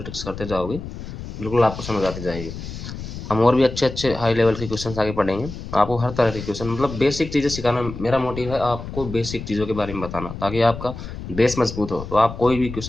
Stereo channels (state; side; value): noise; left; rumble, 10 dB below the sound